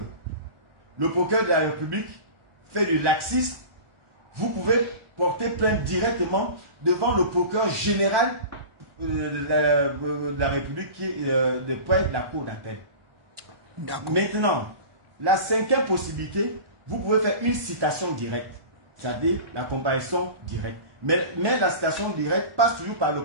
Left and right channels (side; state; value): left; late; 1.2 ms